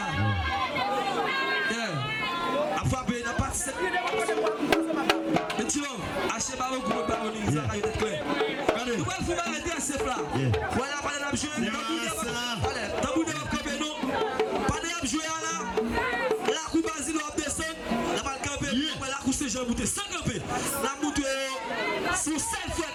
A frappé n'a pas et tu vois, achetez pas beaucoup de paroles, ça va être clair. Nous allons faire arrêter à ce plat. Voilà, pas de jouer. Allez, t'as bout de camper non. Pas de jouer là. La coupe Basile va descendre. La balle camper. La coupe c'est Jean Bouté. Sans camper. La boutte sur cette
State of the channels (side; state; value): both; identical; correlation 1.00